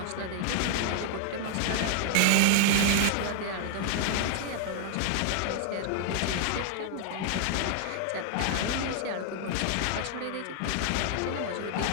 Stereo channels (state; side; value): different; both; correlation 0.00